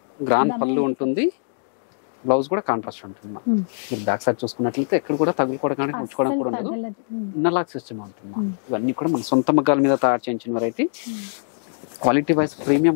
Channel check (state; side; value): silent; right; digital silence